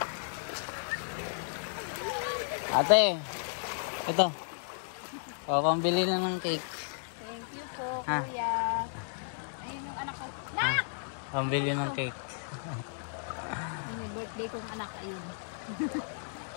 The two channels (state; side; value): silent; right; digital silence